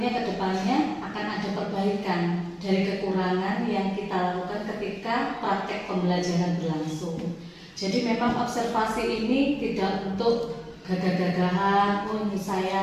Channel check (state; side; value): identical; both; correlation 1.00